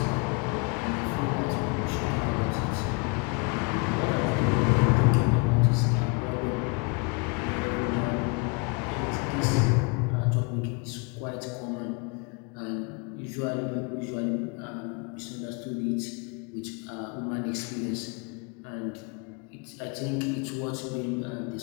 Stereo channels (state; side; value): quieter; right; 32.1 dB